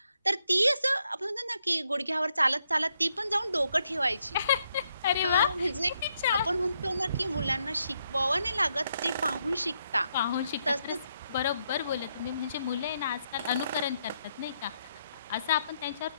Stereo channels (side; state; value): both; inverted; correlation -0.78